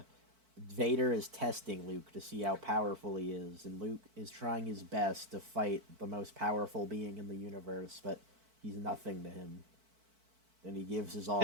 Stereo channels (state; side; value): late; left; 4.5 ms